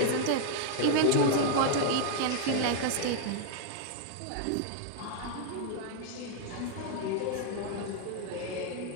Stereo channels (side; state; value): both; different; correlation 0.00